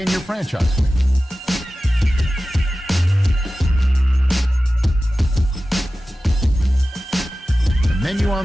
your franchise with. The menu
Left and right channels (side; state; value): both; normal; correlation 0.95